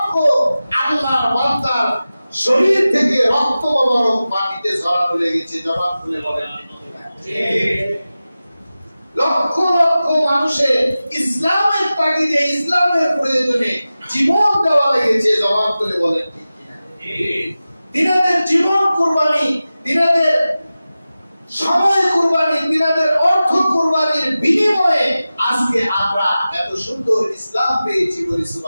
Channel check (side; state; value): both; inverted; correlation -0.95